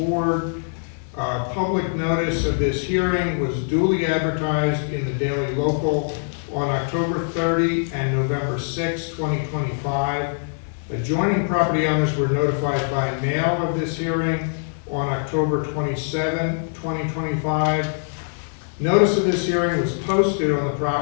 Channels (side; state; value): right; silent; digital silence